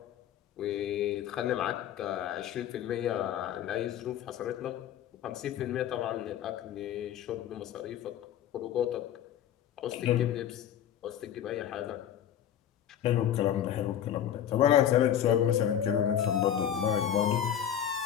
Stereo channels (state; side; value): quieter; right; 10.2 dB